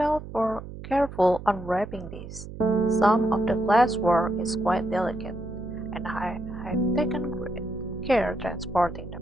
careful unwrapping this. Some of the glasswork is quite delicate, and I have taken great care transporting them.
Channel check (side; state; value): right; noise; hum, 12 dB below the sound